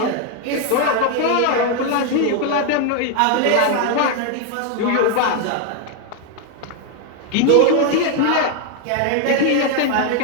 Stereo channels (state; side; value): different; both; correlation 0.01